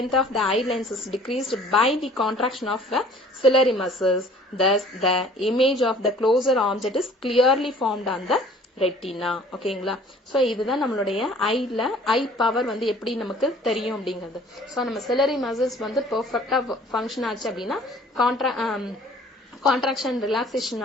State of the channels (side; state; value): both; normal; correlation 0.52